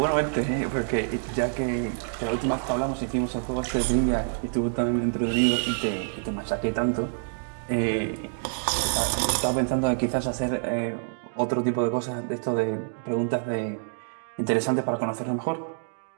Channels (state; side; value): silent; left; digital silence